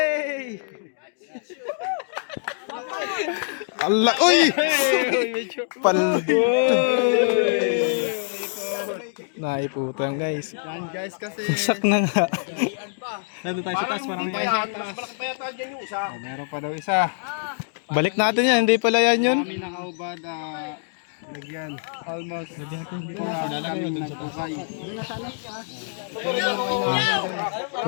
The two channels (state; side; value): silent; right; digital silence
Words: Allah! Uy! Naiputang guys. Yan guys kasi. Sak na nga. Nandun tayo sa taas. Parang may malaki pa yata dyan yung isa. Meron pa daw isa. Balik natin yan. Hindi pala yan yun. Kami nakaubad. Lagyan. Almost. Hindi ko na kami nagtukay.